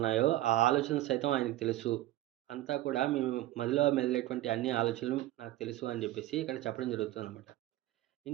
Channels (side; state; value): left; quieter; 15.7 dB